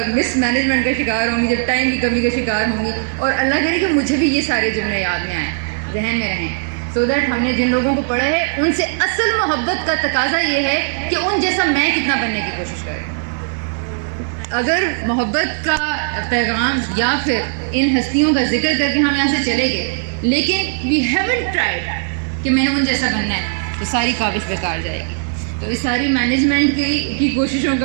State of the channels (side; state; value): left; silent; 67 dB below the other